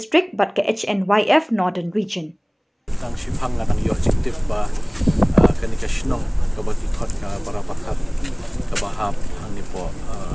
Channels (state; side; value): identical; both; correlation 1.00